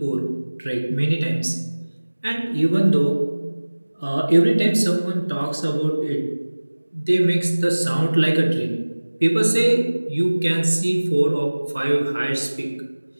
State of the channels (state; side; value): inverted; both; correlation -1.00